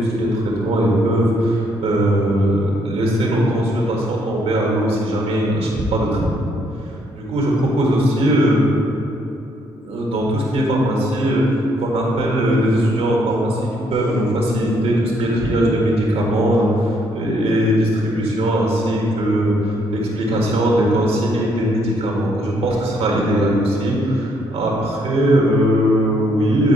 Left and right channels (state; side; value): normal; both; correlation 0.70